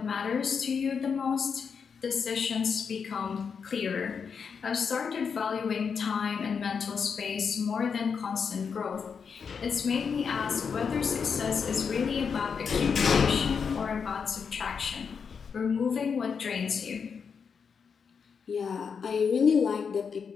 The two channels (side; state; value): right; quieter; 6.2 dB